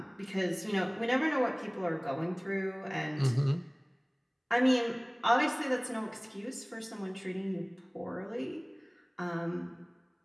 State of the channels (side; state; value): both; identical; correlation 1.00